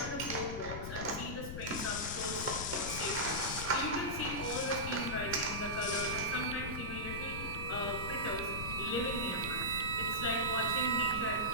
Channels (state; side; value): noise; left; rumble, 6 dB below the sound